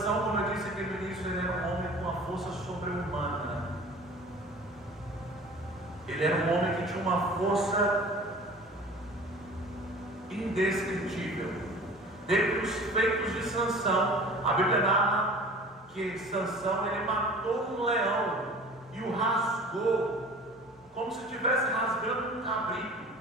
como eu disse aqui no início, ele era um homem com uma força sobre-humana. Ele era um homem que tinha uma força indescritível. Dentre os feitos de Sansão, a Bíblia narra que Sansão ele matou um leão e o rasgou, como se estivesse rasgando um cabrito.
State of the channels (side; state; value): both; normal; correlation 0.43